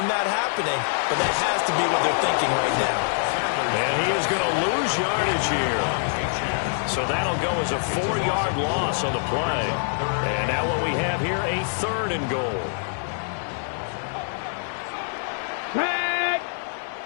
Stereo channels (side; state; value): right; silent; digital silence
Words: that happening, but that has to be what they're thinking right now. And he is going to lose yardage here. So that'll go as a 4-yard loss on the play. And now what we have here, a 3rd and goal. Tag!